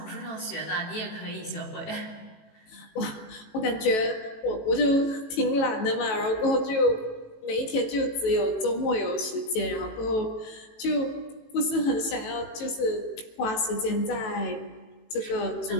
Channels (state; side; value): late; right; 18 ms